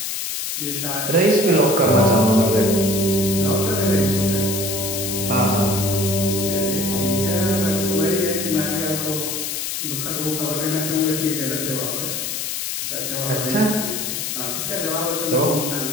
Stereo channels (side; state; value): left; noise; hiss, 3 dB below the sound